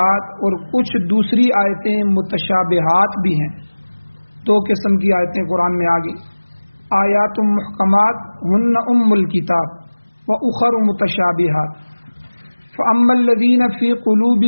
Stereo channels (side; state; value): both; inverted; correlation -1.00